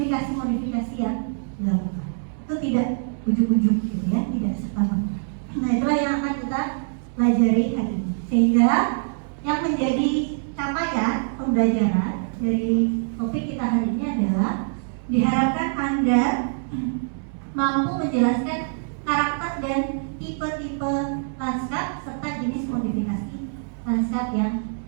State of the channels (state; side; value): silent; left; digital silence